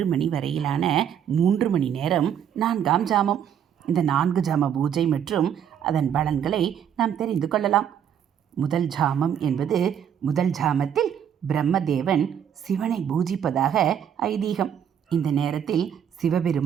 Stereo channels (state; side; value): quieter; left; 8.9 dB